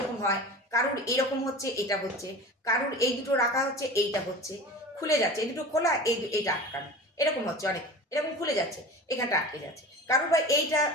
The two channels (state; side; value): normal; both; correlation 0.36